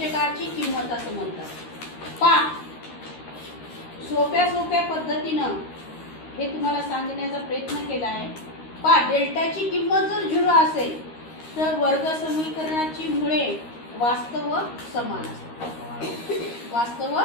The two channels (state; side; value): late; right; 13 ms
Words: किंमत असं म्हणतात। पहा, सोप्या पद्धतीनं हे तुम्हाला सांगण्याचा प्रयत्न केला आहे। पहा, डेल्टाची किंमत जर 0 असेल तर वर्ग समीकरणाची मुळे वास्तव व समान असतात। वास्तव व